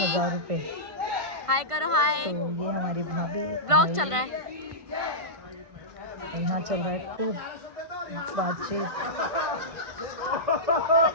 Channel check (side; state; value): left; late; 1.5 ms